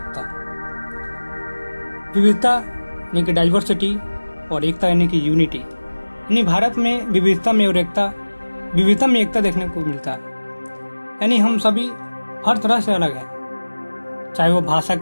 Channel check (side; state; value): both; inverted; correlation -1.00